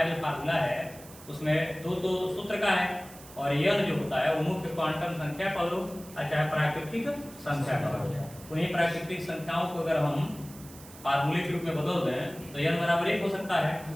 फार्मूला है, उसमें दो सूत्र का है और n जो होता है वो मुख्य क्वांटम संख्या का लो चाहे प्राकृतिक संख्या का लो। उन्हीं प्राकृतिक संख्याओं को अगर हम फार्मूले के रूप में बदल दें तो n बराबर 1 हो सकता है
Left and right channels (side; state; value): right; noise; hiss, 19 dB below the sound